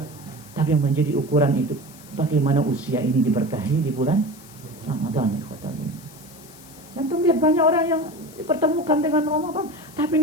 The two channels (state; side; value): noise; left; hiss, 21 dB below the sound